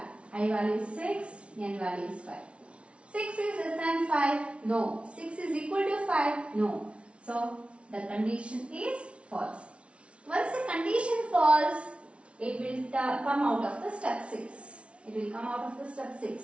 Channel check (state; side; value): late; left; 0.060 ms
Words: I value is 6, n value is 5. 6 is less than 5? No. 6 is equal to 5? No. So, the condition is false. Once the condition false, it will come out of the step 6. It will come out of the step